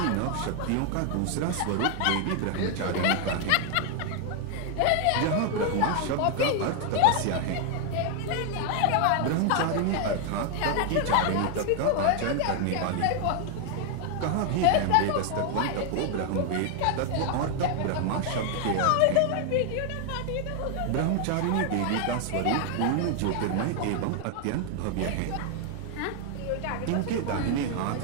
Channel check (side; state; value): both; different; correlation 0.00